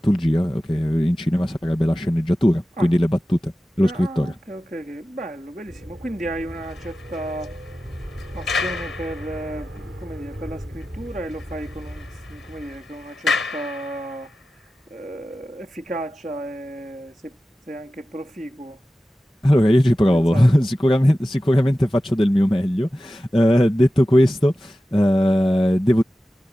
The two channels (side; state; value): both; normal; correlation 0.94